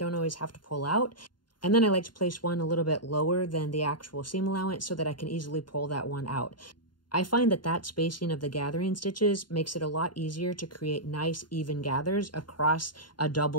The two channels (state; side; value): late; right; 0.71 ms